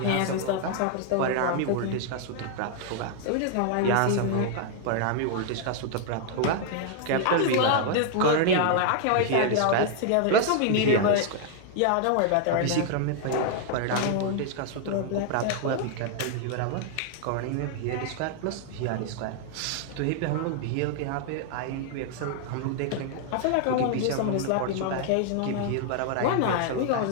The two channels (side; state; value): both; different; correlation 0.00